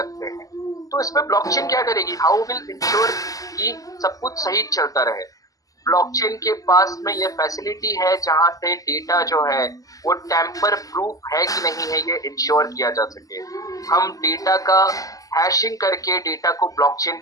हैं। तो इसमें ब्लॉकचेन क्या करेगी? हाउ विल इंश्योर कि सब कुछ सही चलता रहे? ब्लॉकचेन के पास में ये फैसिलिटी है जहां से डेटा जो है वो टैंपर प्रूफ है कि नहीं है ये इंश्योर किया जा सके। हम डेटा का हैशिंग करके डेटा को ब्लॉकचेन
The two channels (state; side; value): late; right; 0.17 ms